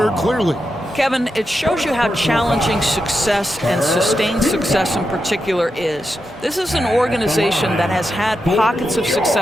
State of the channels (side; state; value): both; normal; correlation 0.87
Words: clearly. Kevin, it shows you how challenging success and sustained success in particular is. This is an organization that has had pockets of